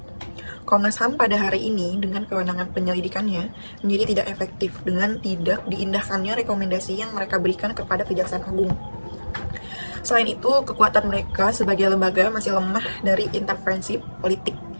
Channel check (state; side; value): inverted; both; correlation -1.00